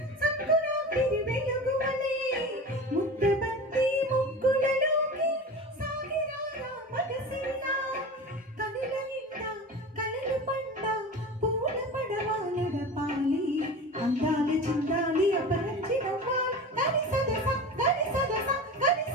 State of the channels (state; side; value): normal; both; correlation 0.32